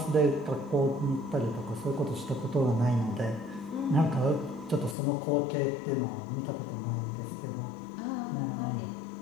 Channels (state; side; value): drops out; right; at 5.0 s